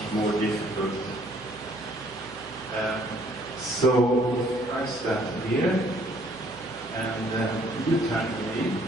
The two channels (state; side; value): noise; right; hum, 22 dB below the sound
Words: more difficult. So I start here, and you turn to me.